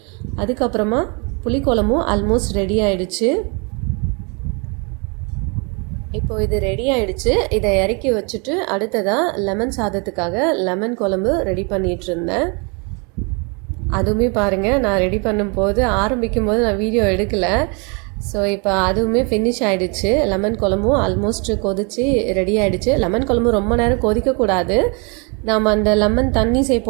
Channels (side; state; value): left; quieter; 32.8 dB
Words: அதுக்கப்புறமா புளிக்குழம்பும் ஆல்மோஸ்ட் ரெடி ஆகிடுச்சு. இப்போ இது ரெடி ஆகிடுச்சு. இதை இறக்கி வச்சுட்டு அடுத்ததாக லெமன் சாதத்துக்காக லெமன் குழம்பு ரெடி பண்ணிகிட்டு இருந்தேன். அதுவுமே பாருங்கள், நான் ரெடி பண்ணும்போது ஆரம்பிக்கும்போது நான் வீடியோ எடுக்கலை. ஸோ இப்போ அதுவுமே ஃபினிஷ் ஆகிடுச்சு. லெமன் குழம்பும் ஆல்மோஸ்ட் கொதிச்சு ரெடி ஆகிடுச்சு. லெமன் குழம்பு ரொம்ப நேரம் கொதிக்கக்கூடாது. நாம் அந்த லெமன் தண்ணி